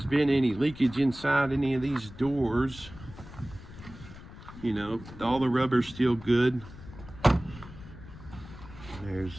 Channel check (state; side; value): noise; left; rumble, 16 dB below the sound